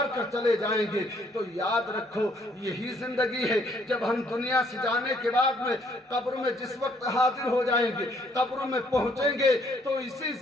کر چلے جائیں گے۔ تو یاد رکھو یہی زندگی ہے، جب ہم دنیا سے جانے کے بعد میں قبر میں جس وقت حاضر ہو جائیں گے، قبر میں پہنچیں گے، تو اسی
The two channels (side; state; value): both; normal; correlation 0.66